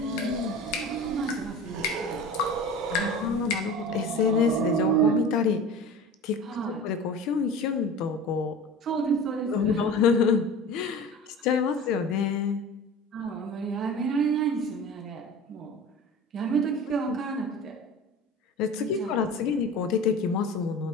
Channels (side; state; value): both; normal; correlation 0.36